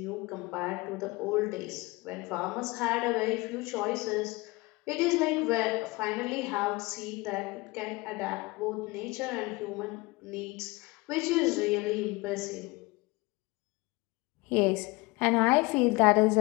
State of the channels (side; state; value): right; quieter; 23.8 dB